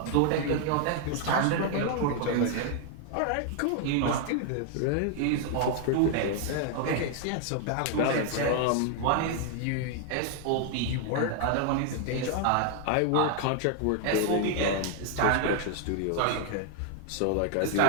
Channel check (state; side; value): different; both; correlation 0.00